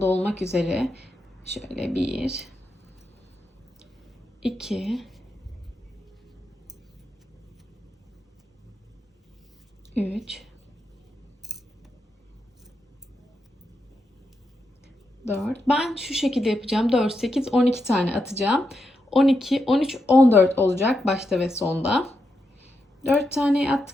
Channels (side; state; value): both; normal; correlation 0.84